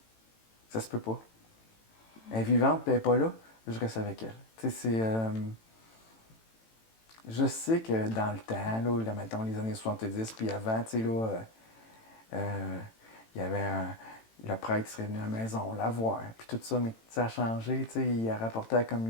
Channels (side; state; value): right; late; 18 ms